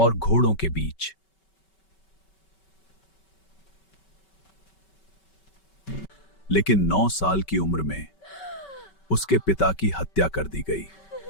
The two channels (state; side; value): late; right; 5.2 ms